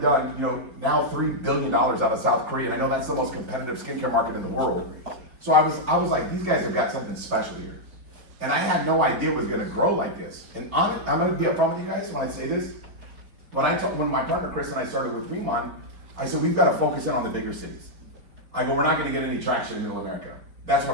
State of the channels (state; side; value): late; left; 4.3 ms